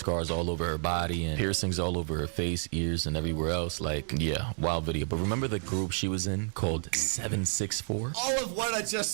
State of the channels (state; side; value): silent; left; 58 dB below the other